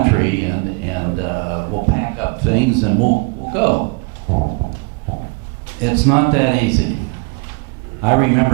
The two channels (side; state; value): left; quieter; 29.7 dB